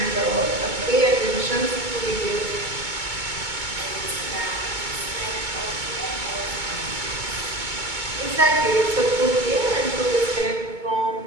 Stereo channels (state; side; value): late; left; 2.2 ms